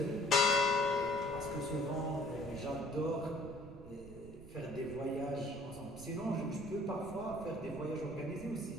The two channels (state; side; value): noise; right; rumble, 16 dB below the sound